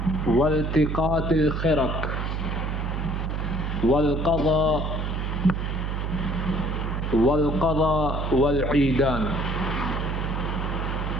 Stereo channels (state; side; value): noise; right; hum, 2 dB below the sound